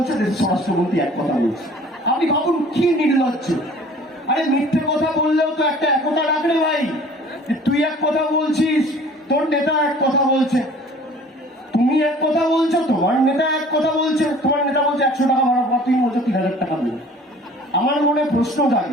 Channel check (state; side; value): normal; both; correlation 0.49